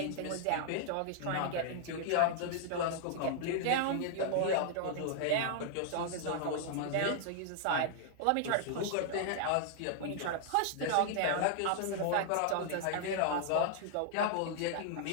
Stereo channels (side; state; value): both; different; correlation -0.01